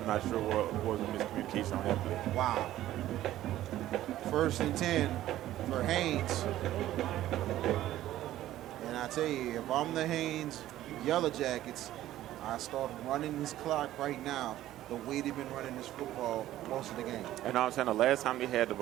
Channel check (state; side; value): quieter; left; 13.9 dB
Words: not sure what was the miscommunication on that play. Wow. 1st and 10 for Haynes. And I tell you, if I'm the Haynes Yellow Jackets, I start running this clock right now the way they've been running this football most of the game. And I'm saying the last time they had the